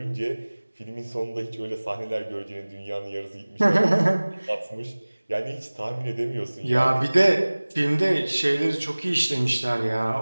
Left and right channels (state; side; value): inverted; both; correlation -1.00